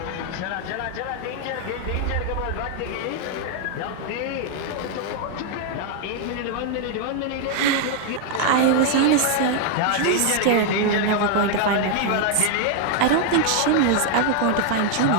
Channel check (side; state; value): both; different; correlation 0.00